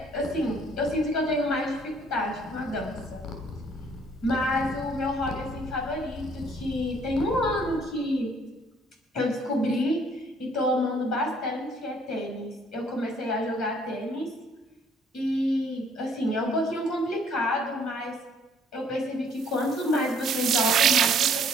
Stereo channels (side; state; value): both; normal; correlation 0.61